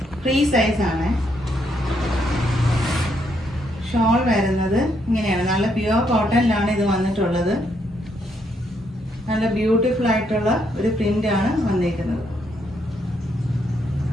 ഫ്രീ സൈസ് ആണ്. ഷോൾ വരുന്നത് ഇങ്ങനെയാണ്. നല്ല പ്യുവർ കോട്ടണിലാണ് ഇത് വന്നിട്ടുള്ളത്. നല്ല ബ്യൂട്ടിഫുൾ ആയിട്ടുള്ള ഒരു പ്രിന്റ് ആണ് വന്നിരിക്കുന്നത്.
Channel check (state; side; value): normal; both; correlation 0.75